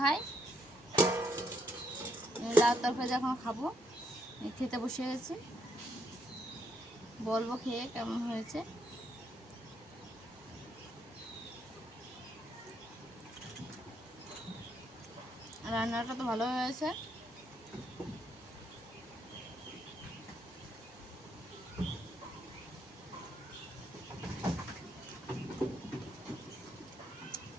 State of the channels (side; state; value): both; normal; correlation 0.74